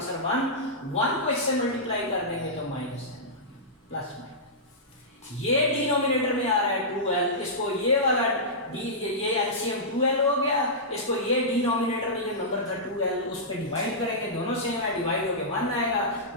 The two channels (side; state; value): both; normal; correlation -0.14